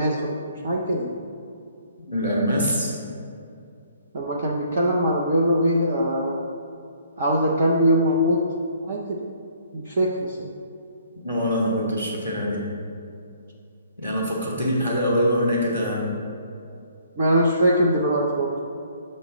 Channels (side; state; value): both; inverted; correlation -0.62